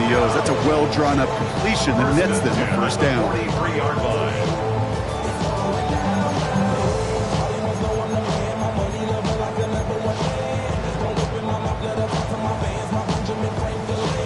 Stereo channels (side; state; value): both; identical; correlation 1.00